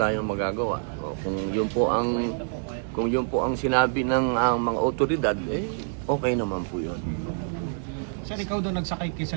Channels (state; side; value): silent; left; digital silence